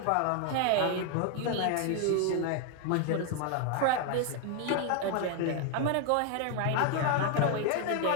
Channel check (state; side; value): different; both; correlation 0.00